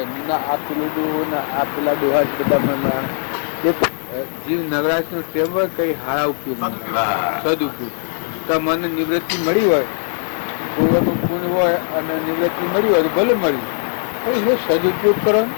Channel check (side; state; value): right; silent; digital silence